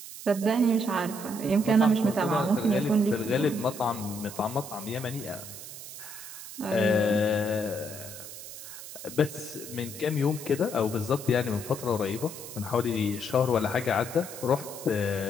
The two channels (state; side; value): noise; right; hiss, 12 dB below the sound